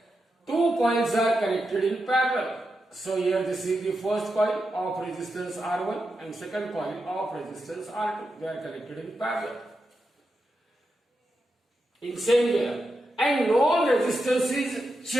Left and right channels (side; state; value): both; normal; correlation 0.87